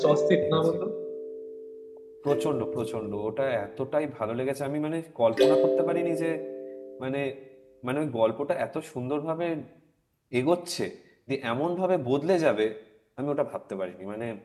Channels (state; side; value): identical; both; correlation 1.00